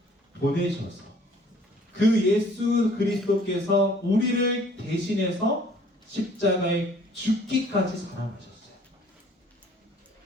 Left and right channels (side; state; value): both; normal; correlation 0.56